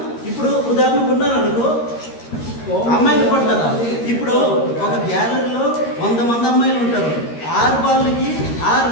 ఇప్పుడు ఉదాహరణకు ఉన్నారు అనుకో, అమ్మాయిలు పడతారా? ఇప్పుడు ఒక గ్యాలరీలో 100 మంది అమ్మాయిలు ఉంటారు. 6 బాల్కి 6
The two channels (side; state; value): right; late; 13 ms